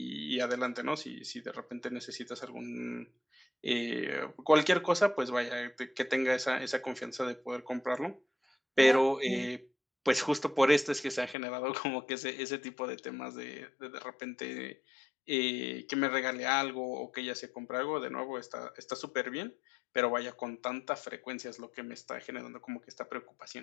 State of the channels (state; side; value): drops out; right; at 11.4 s